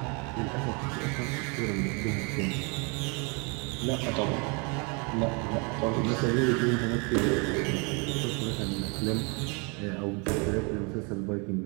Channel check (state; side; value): quieter; left; 32.7 dB